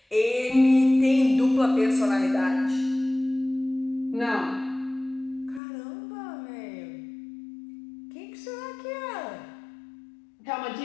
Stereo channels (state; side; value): drops out; right; at 5.6 s